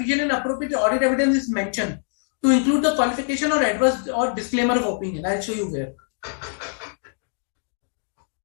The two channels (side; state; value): right; silent; digital silence